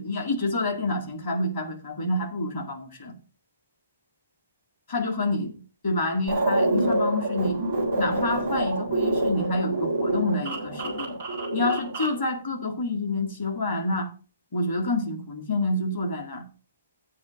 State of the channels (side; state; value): both; inverted; correlation -0.63